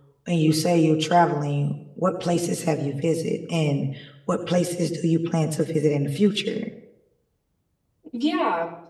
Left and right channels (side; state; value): both; identical; correlation 1.00